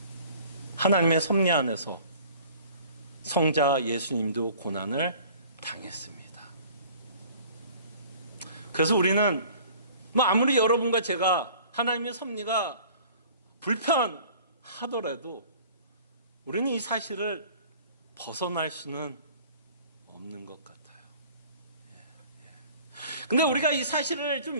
하나님의 섭리 안에서 성자 예수님도 고난을 당했습니다. 그래서 우리는 아무리 여러분과 제가 하나님의 섭리가 불편하더라도 우리는 이 사실을 벗어날 수는 없는 것 같아요. 근데 우리가 이 사실을 좀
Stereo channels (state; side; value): inverted; both; correlation -0.48